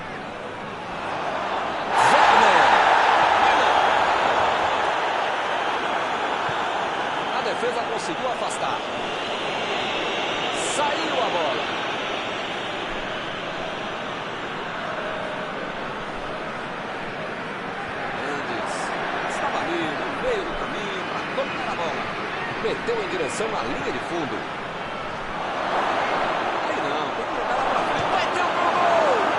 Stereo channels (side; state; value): both; identical; correlation 1.00